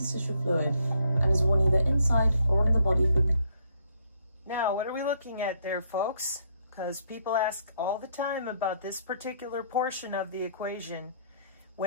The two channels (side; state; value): both; inverted; correlation -0.70